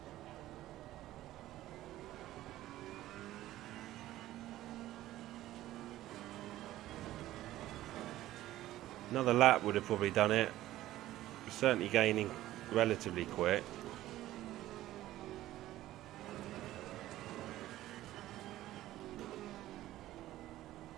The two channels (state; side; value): quieter; left; 14.9 dB